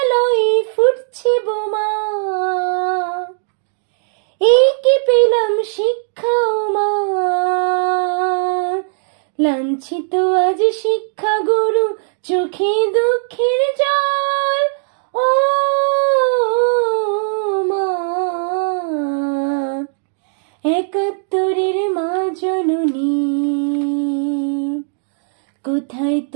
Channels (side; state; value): left; silent; digital silence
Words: ফুটছে বোমা, এই কি পেলাম শিক্ষা ও মা? লাঞ্ছিত আজ শিক্ষা গুরু, চোখে দুঃখের জল। ও মা, একাত্তরের মা জননী, কোথায়